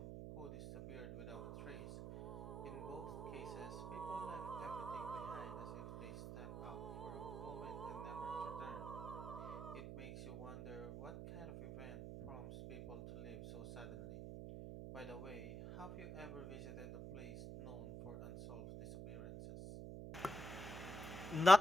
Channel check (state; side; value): noise; right; hum, 8 dB below the sound